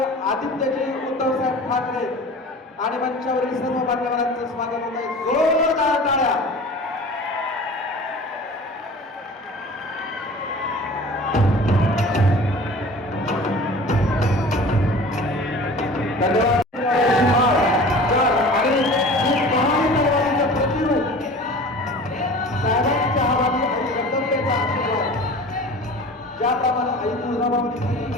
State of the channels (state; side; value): normal; both; correlation 0.41